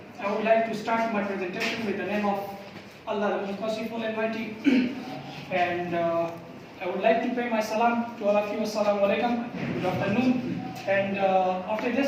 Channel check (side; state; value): both; identical; correlation 1.00